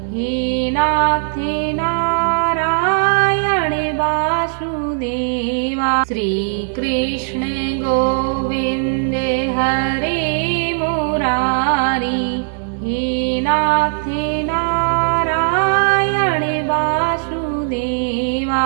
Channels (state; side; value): silent; left; 67 dB below the other